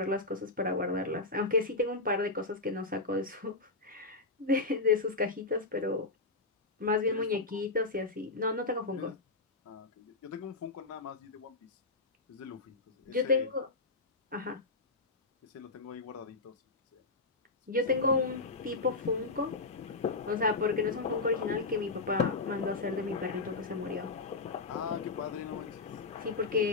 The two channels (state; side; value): quieter; right; 3.5 dB